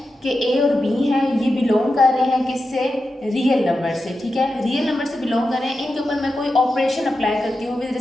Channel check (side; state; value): both; normal; correlation 0.90